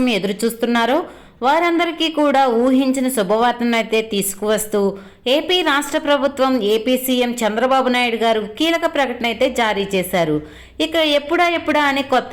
ఎదురు చూస్తున్నారో వారందరికీ కూడా ఊహించిన శుభవార్తను అయితే తీసుకువస్తూ ఏపీ రాష్ట్ర ప్రభుత్వం ఏపీ సీఎం చంద్రబాబు నాయుడు గారు కీలక ప్రకటన అయితే జారీ చేశారు. ఇక ఎప్పుడా అని కొత్త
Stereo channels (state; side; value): identical; both; correlation 1.00